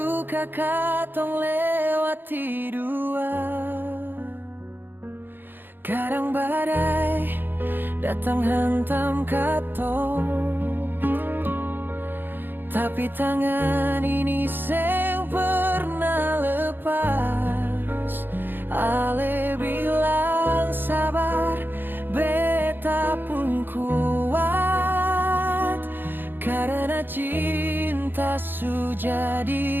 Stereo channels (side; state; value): left; late; 0.096 ms